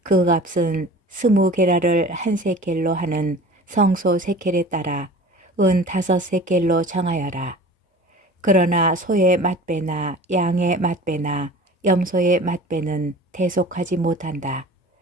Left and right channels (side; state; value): both; normal; correlation 0.41